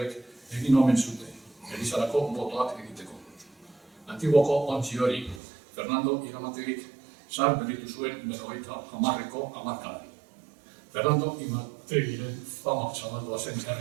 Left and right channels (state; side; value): drops out; left; at 5.4 s